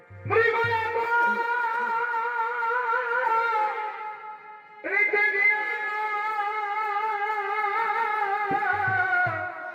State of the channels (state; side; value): identical; both; correlation 1.00